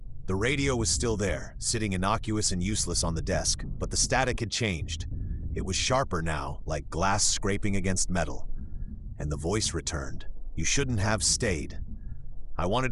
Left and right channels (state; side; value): identical; both; correlation 1.00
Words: The radio was still there, sitting innocuous and useless on the desk, but the static had changed. It was sharper now, like glass scraping against metal. And the voice returned, You shouldn't have stayed. I wanted